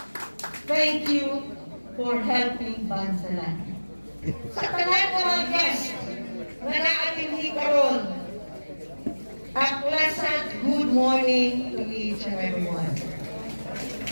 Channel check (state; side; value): inverted; both; correlation -1.00